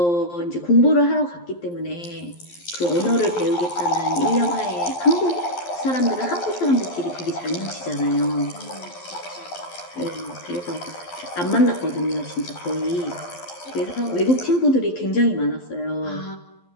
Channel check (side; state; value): right; late; 11 ms